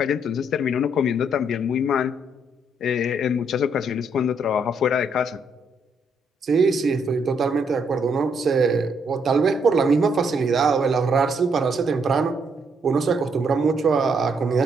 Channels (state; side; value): normal; both; correlation 0.73